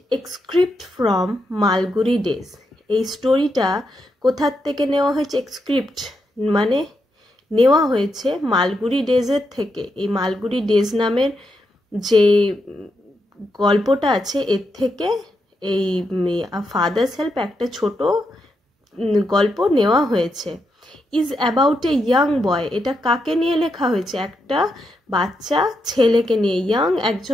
excerpt from Malgudi Days. এই স্টোরিটা কোথার থেকে নেওয়া হয়েছে? এক্সক্রিপ্ট মানে নেওয়া হয়েছে মালগুড়ি ডেজের থেকে। এই মালগুড়ি ডেজ নামের যে গল্পটা আছে এর থেকে এই ফাদার্স হেল্প একটা ছোট গল্প নেওয়া হয়েছে। ইজ অ্যাবাউট এ ইয়াং বয়। এটা কাকে নিয়ে লেখা হয়েছে? একটা বাচ্চা ছেলেকে নিয়ে,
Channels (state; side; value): normal; both; correlation 0.83